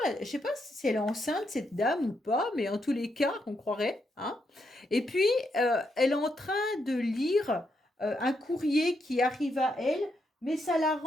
je sais pas si elle est enceinte cette dame ou pas, mais en tous les cas, on croirait, hein. Et puis elle est en train de lire un courrier qui arrive à elle, mais ça la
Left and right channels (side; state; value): both; normal; correlation 0.80